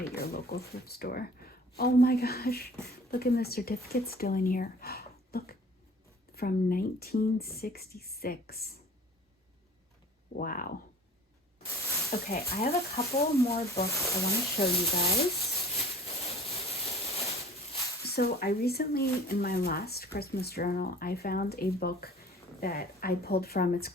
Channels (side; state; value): both; normal; correlation 0.47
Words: at your local thrift store. Oh my gosh, look at the certificate still in here. Look, from 1966. Wow. Okay, I have a couple more books I want to show you guys. So I recently, in my last Christmas journal, I found a book that I pulled from. It's